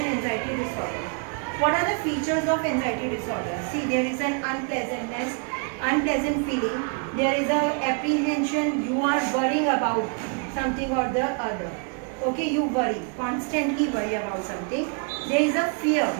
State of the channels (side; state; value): left; quieter; 38.5 dB